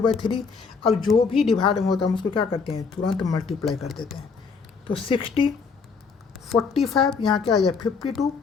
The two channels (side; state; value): right; quieter; 5.2 dB